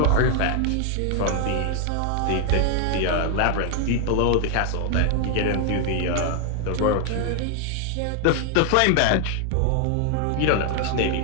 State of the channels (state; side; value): different; both; correlation 0.00